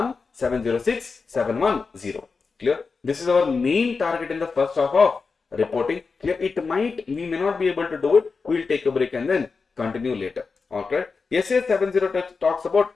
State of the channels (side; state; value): right; quieter; 4.7 dB